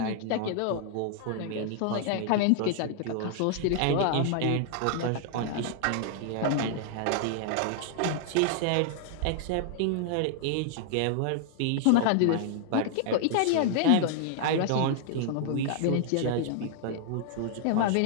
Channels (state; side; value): different; both; correlation -0.01